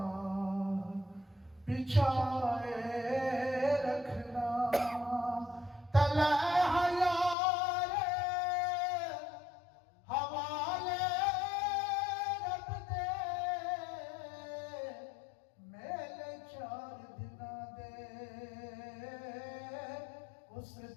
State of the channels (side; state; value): right; drops out; at 7.4 s